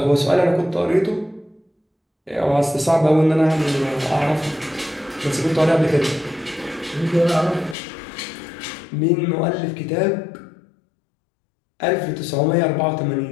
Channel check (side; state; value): right; drops out; at 7.8 s